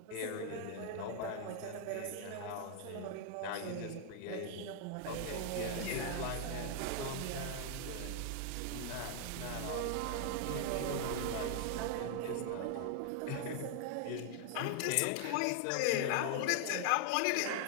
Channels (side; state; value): both; different; correlation 0.00